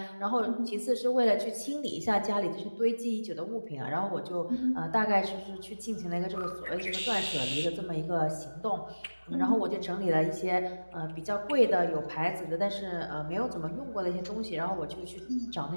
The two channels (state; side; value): inverted; both; correlation -1.00